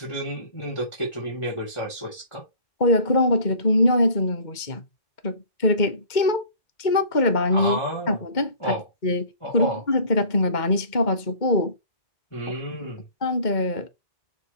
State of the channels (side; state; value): right; late; 2.1 ms